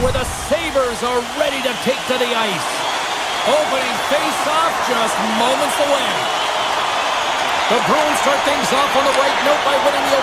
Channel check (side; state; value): both; identical; correlation 1.00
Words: where the Sabres are ready to take to the ice. Opening face-off just moments away. The Bruins start things off on the right note by winning the